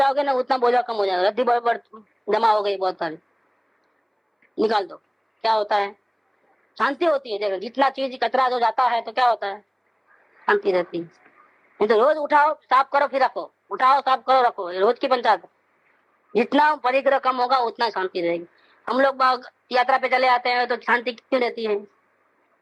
ना उतना बोझा कम हो जाएगा। रद्दी जमा हो गई बहुत सारी, निकाल दो, क्या होता है, शांति होती है। देखो जितना चीज कचरा जो जाता है तो क्या होता है, शांति रहती है। नहीं तो रोज उठाओ साफ करो फिर रखो, उठाओ साफ करो रखो, रोज की पंचायत। जितना परिग्रह कम होगा उतना शांति रहेगी। हम लोग यात्रा पे चले आते हैं तो शांति क्यों रहती है,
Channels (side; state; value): both; identical; correlation 1.00